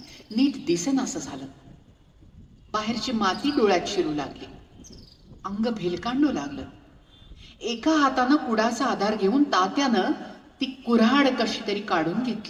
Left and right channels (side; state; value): both; identical; correlation 1.00